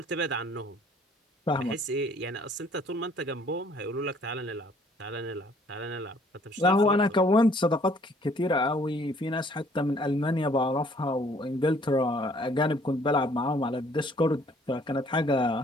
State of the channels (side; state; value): both; normal; correlation 0.60